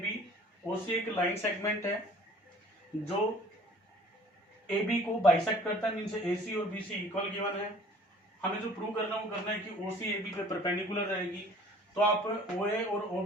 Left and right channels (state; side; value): normal; both; correlation 0.51